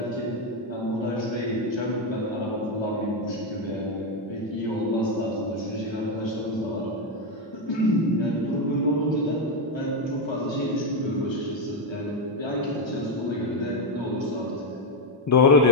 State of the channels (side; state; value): both; normal; correlation 0.04